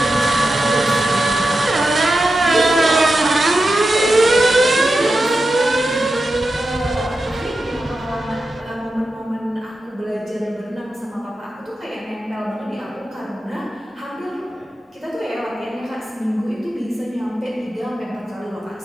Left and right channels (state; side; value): normal; both; correlation 0.90